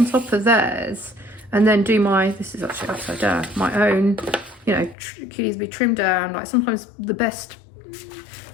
top of theirs and then do this is actually upside down, my own, you know, could either be trimmed down. Like sometimes the best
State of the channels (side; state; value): right; drops out; at 5.0 s